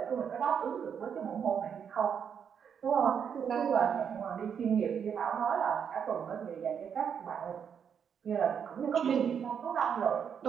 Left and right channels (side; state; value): left; quieter; 7.5 dB